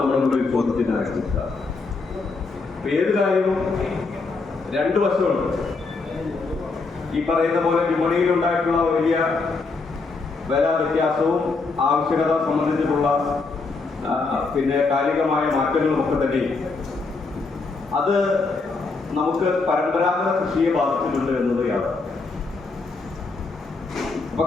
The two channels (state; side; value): quieter; right; 4.0 dB